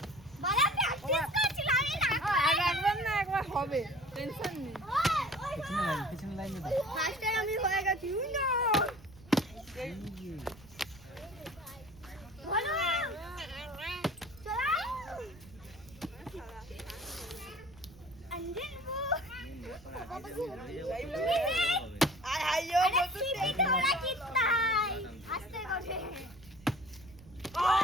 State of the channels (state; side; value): noise; right; rumble, 22 dB below the sound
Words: বালা প্র্যাকটিস করছিলাম আমি না। একবার না একবার হবে, টেনশন নেই। পিছনে লাইন দাও। ফার্স্ট টাইম আমি হয়ে গেছি না। বলো চলো अंजन वो আয় আইও अरे सीधी थोड़ा कितना आस्ते করে